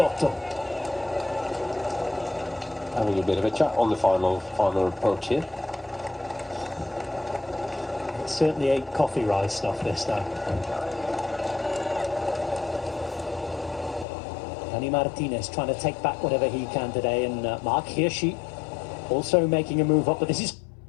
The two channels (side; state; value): right; drops out; at 14.1 s